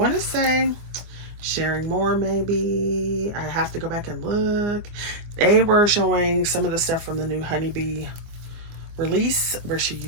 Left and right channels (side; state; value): left; late; 24 ms